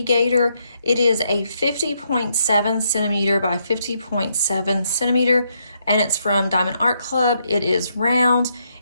Gator. It is a 50.7 centimeter by 50.7 centimeter, and it's from Diamond Art Club. It is round,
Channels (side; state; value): both; inverted; correlation -0.76